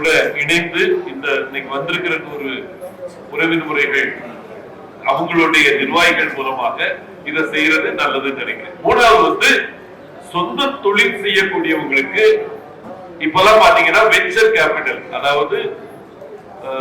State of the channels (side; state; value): both; identical; correlation 1.00